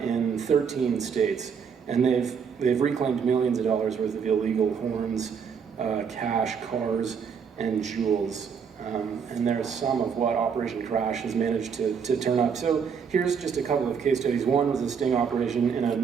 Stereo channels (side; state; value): left; quieter; 6.6 dB